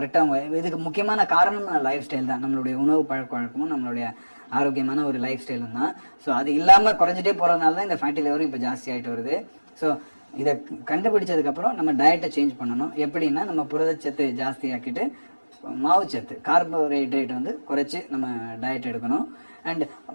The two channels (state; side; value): inverted; both; correlation -1.00